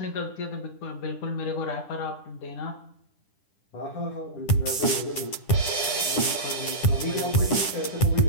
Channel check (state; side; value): late; right; 10 ms